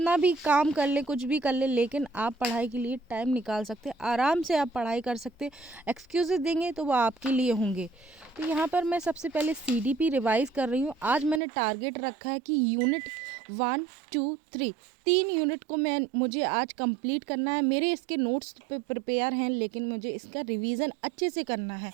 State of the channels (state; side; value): drops out; left; at 11.4 s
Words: भी काम कर ले, कुछ भी कर ले, लेकिन आप पढ़ाई के लिए टाइम निकाल सकते हैं, आराम से आप पढ़ाई कर सकते हैं। एक्सक्यूज़ेस देंगे तो वो आपके लिए होंगे। तो यहाँ पर मैं सबसे पहले सीडीपी रिवाइज़ कर रही हूँ। आज मैंने टारगेट रखा है कि यूनिट 1, 2, 3 3 यूनिट को मुझे आज कंप्लीट करना है। मेरे इसके नोट्स प्रिपेयर हैं, लेकिन मुझे इसका रिवीजन अच्छे से करना है,